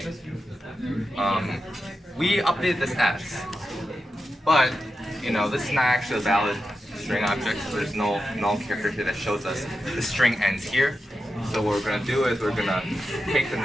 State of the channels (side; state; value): both; normal; correlation 0.90